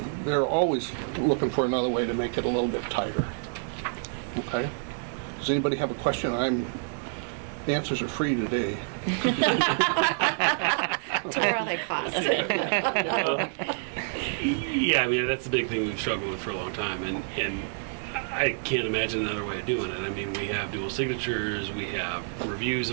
they're always looking for another way to make it a little bit tighter. Okay? Does anybody have a question? The answers are free today. Where are they cost? Yeah, I mean, that's the big thing we've struggled with for a long time, and I can't imagine another way of doing it. I mean, we have dual signatures, we have reviews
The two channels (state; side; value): silent; left; 59 dB below the other